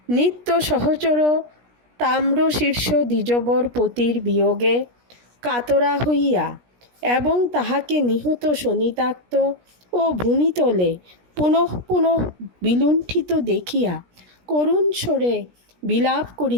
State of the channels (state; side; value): late; left; 17 ms